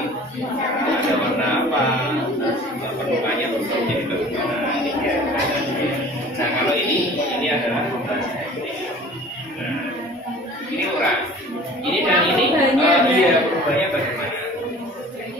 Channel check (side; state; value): both; normal; correlation 0.45